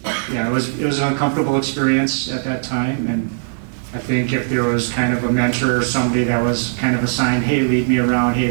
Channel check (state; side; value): silent; left; digital silence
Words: yeah, it was an uncomfortable experience at that time, and I think if there was kind of a mentor or somebody that was kind of assigned, hey, lead me around, hey,